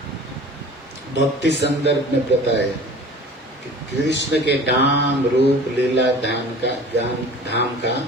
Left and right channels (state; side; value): normal; both; correlation 0.43